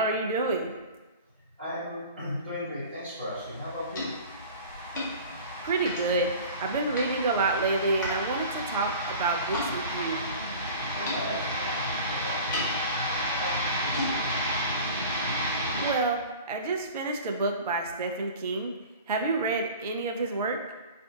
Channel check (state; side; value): inverted; both; correlation -0.39